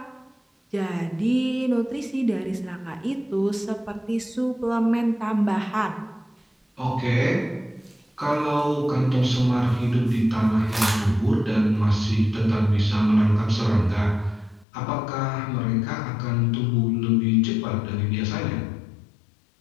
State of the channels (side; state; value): right; drops out; at 14.7 s